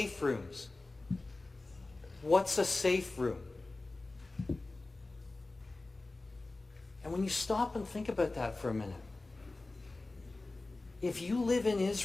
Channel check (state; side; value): quieter; right; 3.2 dB